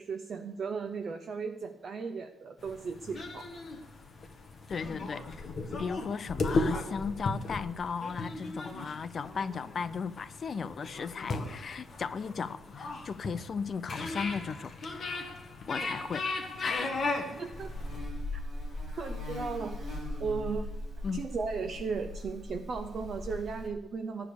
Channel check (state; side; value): normal; both; correlation 0.79